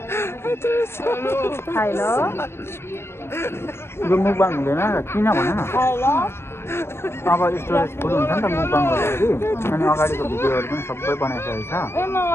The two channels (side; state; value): right; late; 0.12 ms